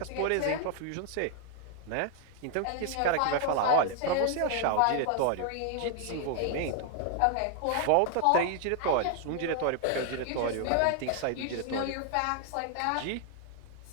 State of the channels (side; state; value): both; different; correlation 0.00